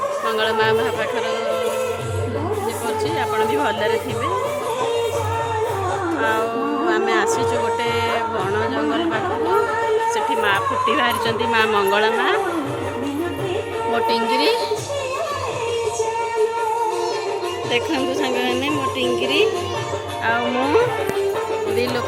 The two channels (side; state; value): both; identical; correlation 1.00